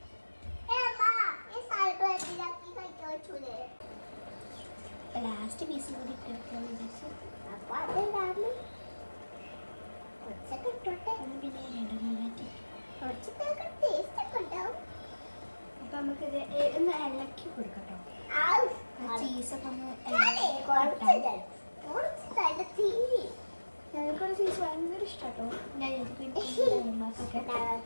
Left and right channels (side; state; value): both; inverted; correlation -1.00